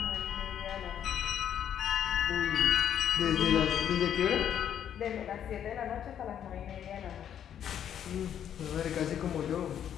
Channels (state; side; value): quieter; right; 9.5 dB